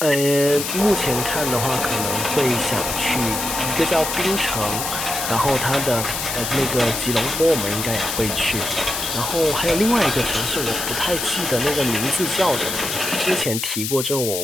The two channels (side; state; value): left; noise; hiss, 3 dB below the sound